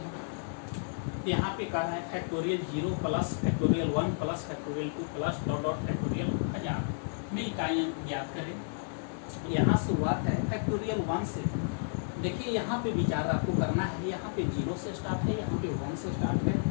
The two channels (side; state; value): right; silent; digital silence